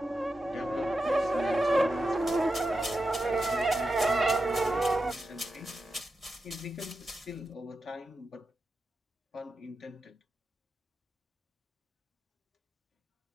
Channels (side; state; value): both; normal; correlation 0.90